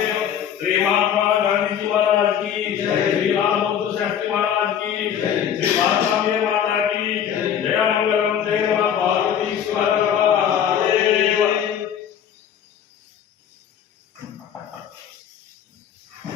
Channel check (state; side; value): quieter; right; 9.1 dB